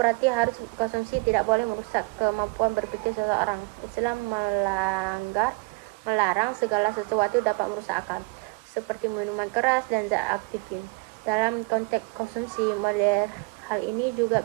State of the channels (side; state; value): left; quieter; 29.7 dB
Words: harus konsumsi tidak boleh merusak kemampuan berpikir seseorang. Islam melarang segala sesuatu dapat merusak akal, seperti minuman keras dan zat aktifin. Dalam konteks konsumsi modern, hal ini juga